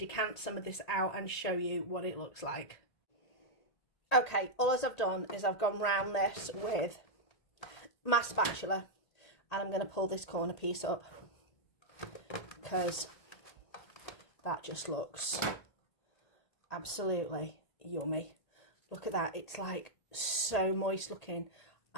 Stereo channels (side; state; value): right; late; 1.8 ms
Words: some of this out and show you what it looks like. Okay, all I've done is I've gone round this with my spatula, and I'm going to pull this corner piece up because that just looks absolutely yummy. Look at that, it's like so moist looking,